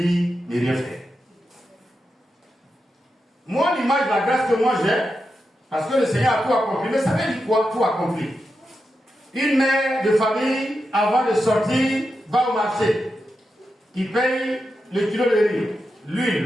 ne rien faire? Moi, l'image de la grâce que moi j'ai, parce que le Seigneur a tout accompli, mais ça veut dire quoi, tout accompli? Une mère de famille, avant de sortir, va au marché. Il paye le kilo de riz,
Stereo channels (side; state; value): both; normal; correlation 0.88